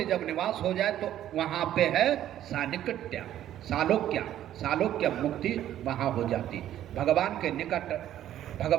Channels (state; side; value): quieter; left; 12.0 dB